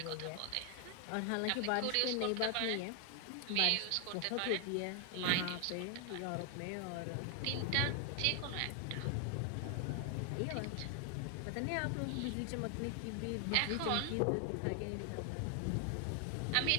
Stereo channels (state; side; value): different; both; correlation 0.00